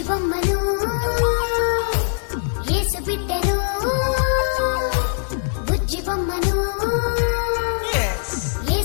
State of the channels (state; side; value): silent; right; digital silence